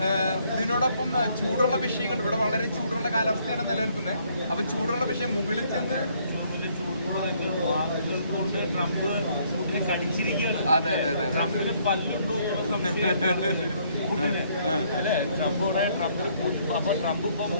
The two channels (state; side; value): inverted; both; correlation -0.67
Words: ഇതിനോടൊപ്പം ചൂടുള്ള വിഷയങ്ങൾ, ഇവിടെ വളരെ ചൂടുള്ള കാലാവസ്ഥയാണ് നിലനിൽക്കുന്നത്. അപ്പൊ ചൂടുള്ള വിഷയം മുകളിൽ ചെന്ന് കൊണ്ട് ട്രംപ് പുടിനെ കടിച്ചിരിക്കുകയാണ്. അതെ അതെ അതെ, ട്രംപിന് പല്ലുണ്ടോ അല്ലെ? ട്രംപിന് അപ്പൊ ട്രംപ് ഇപ്പം